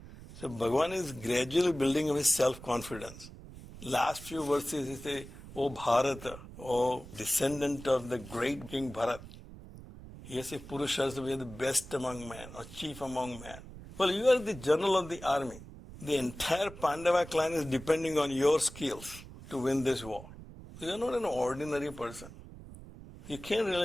So Bhagavan is gradually building up his self-confidence. Last few verses he says, O Bharata, O descendant of the great King Bharat. He says Purusharsabha, you are the best among men, or chief among men. Well, you are the general of the army. The entire Pandava clan is depending on your skills to win this war. So you are not an ordinary person. You can't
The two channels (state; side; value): noise; right; rumble, 15 dB below the sound